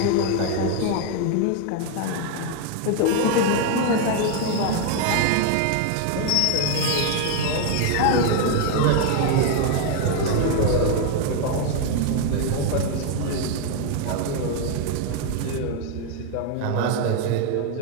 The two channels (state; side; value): different; both; correlation 0.01